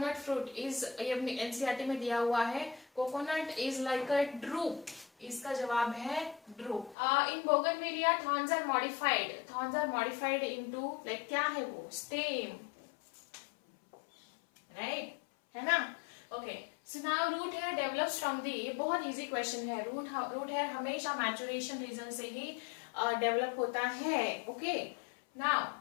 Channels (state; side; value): drops out; right; at 7.0 s